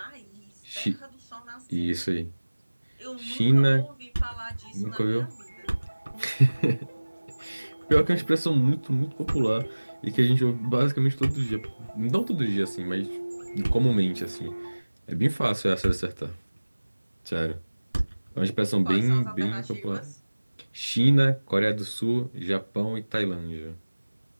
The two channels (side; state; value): both; inverted; correlation -1.00